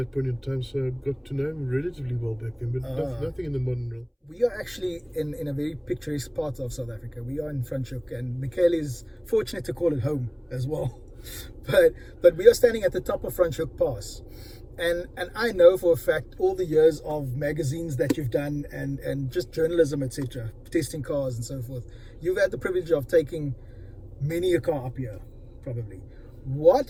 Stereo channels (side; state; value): both; identical; correlation 1.00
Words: point in time, so I got to know him relatively well back then, but nothing in the modern realm. We are actually in a very picturesque part of South Africa. We are in Franschhoek, and Michele is fortunate to call it home as well. But we are standing at the top of Franschhoek Pass. And I know for a fact all the years of magazines that you've done and just journalism, etc., testing cars and so forth. You've had the privilege of taking many a car up here, probably. What